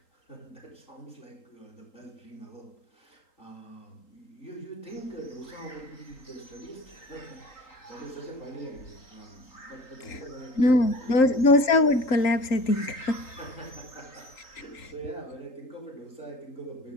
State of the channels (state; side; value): late; right; 3.8 ms